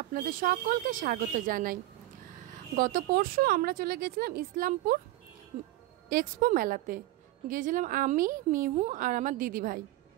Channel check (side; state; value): left; quieter; 16.4 dB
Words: আপনাদের সকলকে স্বাগত জানাই। গত পরশু আমরা চলে গেছিলাম ইসলামপুর এক্সপো মেলাতে। গিয়েছিলাম আমি, মিহু আর আমার দিদি ভাই।